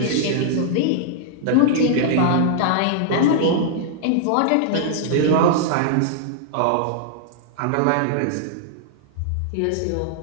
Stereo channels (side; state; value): both; different; correlation -0.01